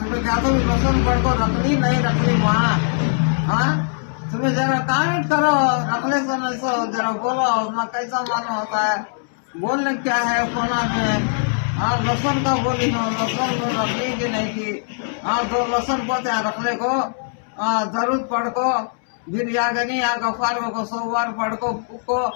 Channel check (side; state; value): right; silent; 65 dB below the other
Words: क्या तो लसन पढ़ को रखनी नहीं रखनी वहाँ। हाँ, तुम्हें जरा कमेंट करो, रखने से नहीं सो जरा बोलो अपना कैसा मालूम होता है, बोलने क्या है कोना में। हाँ, लसन का बोली हो, लसन को रखनी की नहीं की। हाँ, 2 लसन पढ़ते हैं रखने को। जरूर पढ़ को, फिर या गनी या गफार को 100 बार पढ़ को।